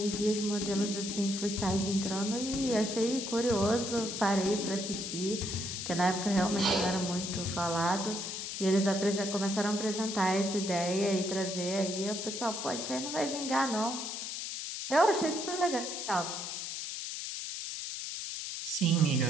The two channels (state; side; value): noise; left; hiss, 5 dB below the sound